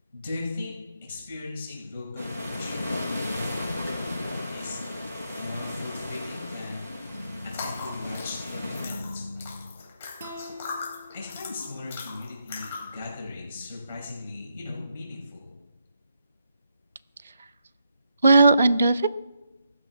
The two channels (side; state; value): both; inverted; correlation -0.80